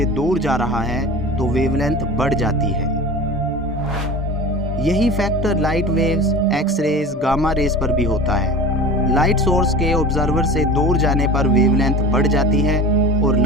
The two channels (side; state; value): both; normal; correlation 0.36